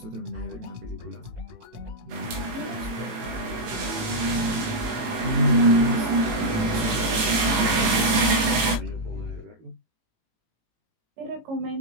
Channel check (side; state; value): left; late; 18 ms